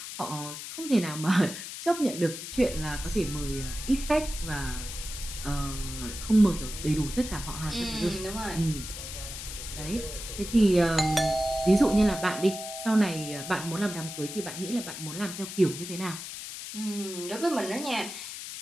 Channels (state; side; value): noise; left; hiss, 9 dB below the sound